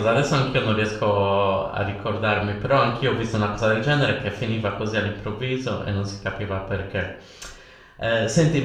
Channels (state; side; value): identical; both; correlation 1.00